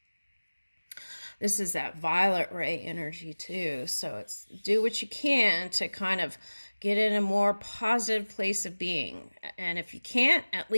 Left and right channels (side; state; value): both; inverted; correlation -1.00